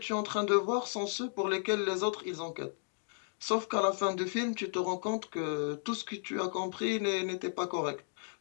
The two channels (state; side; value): silent; right; digital silence